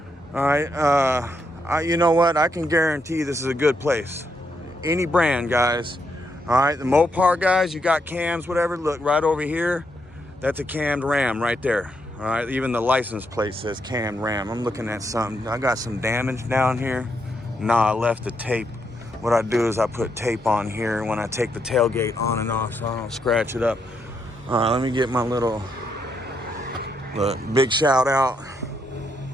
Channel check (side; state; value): both; normal; correlation 0.79